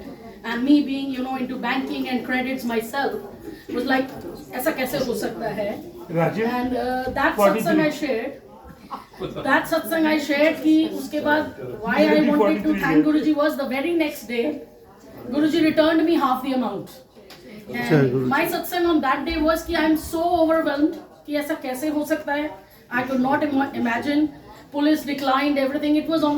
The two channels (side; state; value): both; identical; correlation 1.00